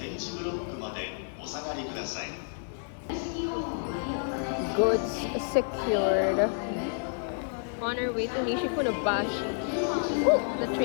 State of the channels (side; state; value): right; silent; digital silence